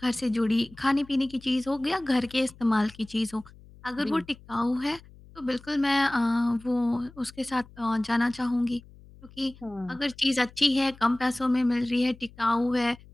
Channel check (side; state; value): left; noise; hum, 22 dB below the sound